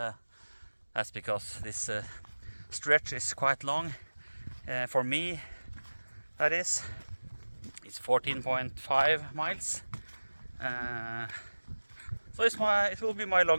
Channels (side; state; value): both; inverted; correlation -1.00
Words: that's because this stretch is quite long. For me, that is. It's 14.5 miles. So it will be my